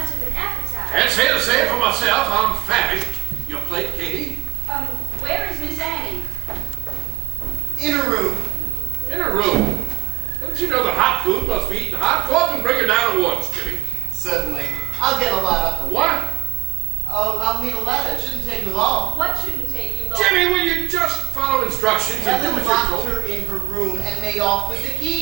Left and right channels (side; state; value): left; quieter; 19.2 dB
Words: of an appetite. Can't say the same for myself. I'm famished. Your plate, Katie? Where is Miss Annie? In her room. In her room. Don't you know that hot food must be eaten hot? Go up and bring it down at once, Jimmy. Certainly. I'll get a ladder. What? I'll need a ladder. It shouldn't take me long. What shouldn't take you long? Jimmy, will you just follow instructions and do Helen what you're locked told? her in her room and made off with the